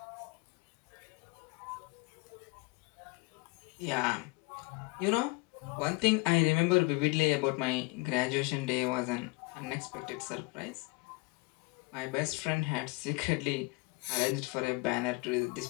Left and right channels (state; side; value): quieter; right; 26.4 dB